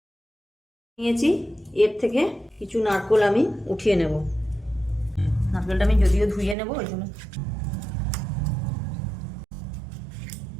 নিয়েছি, এর থেকে কিছু নারকেল আমি উঠিয়ে নেব। নারকেলটা আমি যদিও ধুয়ে নেব, ওই জন্য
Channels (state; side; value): drops out; left; at 6.6 s